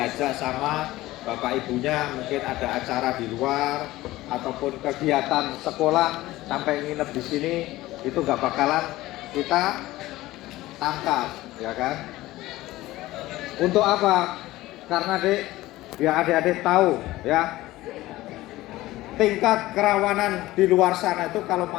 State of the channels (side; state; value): right; quieter; 17.3 dB